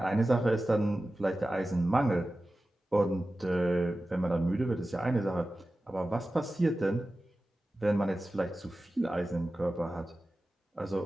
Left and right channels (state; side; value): normal; both; correlation 0.95